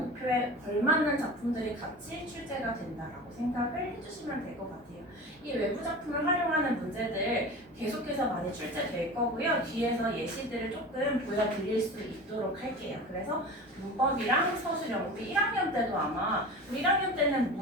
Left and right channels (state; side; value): normal; both; correlation 0.33